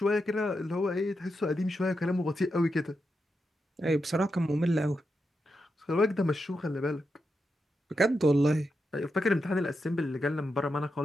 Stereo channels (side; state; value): both; normal; correlation 0.86